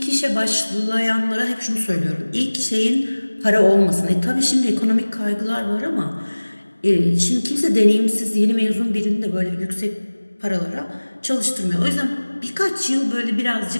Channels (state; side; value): inverted; both; correlation -1.00